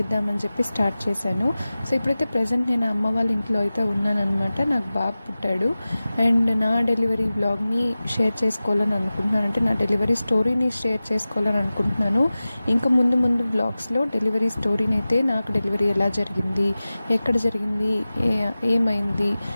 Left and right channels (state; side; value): inverted; both; correlation -0.96